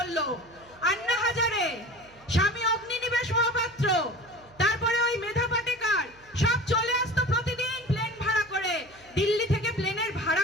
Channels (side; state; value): right; noise; hum, 27 dB below the sound